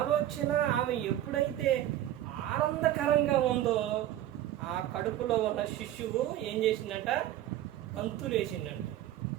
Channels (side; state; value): left; quieter; 12.8 dB